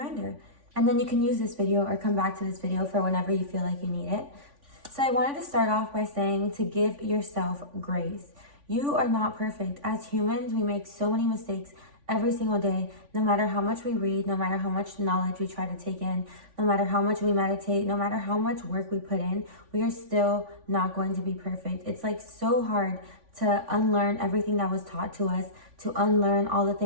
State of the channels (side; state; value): left; late; 3.5 ms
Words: And then you can use this video or come back to this video for whenever you feel like you need it. So I wanted to start off by saying to give yourself grace. You are not perfect. As humans, we make so many mistakes every single day, no matter how much we read, no matter how much knowledge we try to take in, no matter how much we meditate, no matter how much work we put in, we are still not going to be perfect. It's like so hard to unlearn everything that was taught to us, to unlearn all the